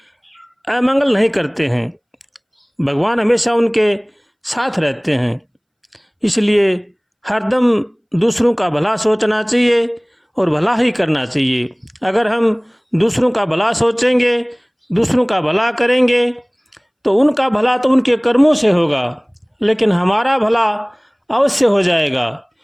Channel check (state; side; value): identical; both; correlation 1.00